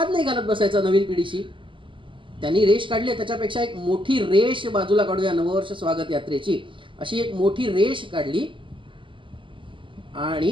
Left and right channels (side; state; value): left; late; 0.25 ms